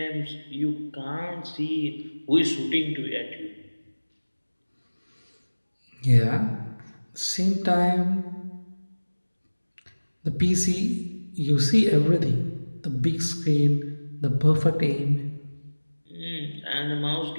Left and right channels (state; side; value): inverted; both; correlation -1.00